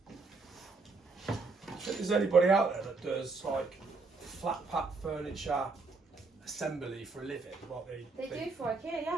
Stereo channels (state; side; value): quieter; left; 4.0 dB